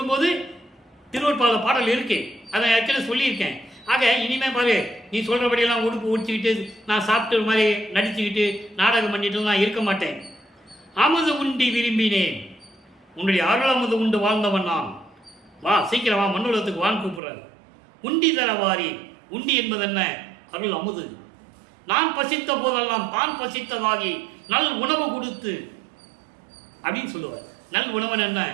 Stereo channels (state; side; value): drops out; left; at 17.2 s